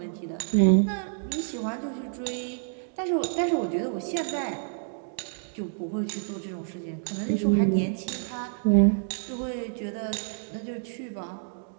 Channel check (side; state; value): left; silent; digital silence